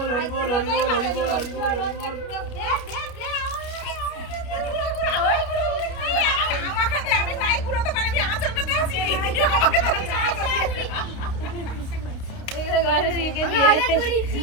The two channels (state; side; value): late; right; 29 ms